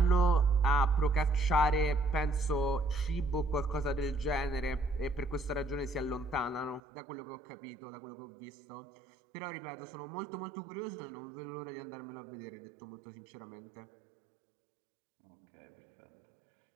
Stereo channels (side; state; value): left; drops out; at 6.8 s